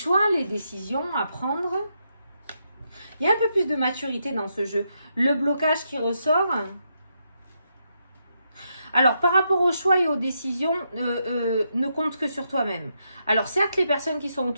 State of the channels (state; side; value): inverted; both; correlation -0.81